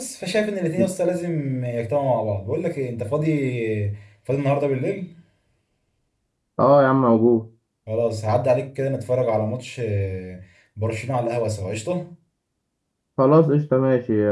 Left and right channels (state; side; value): identical; both; correlation 1.00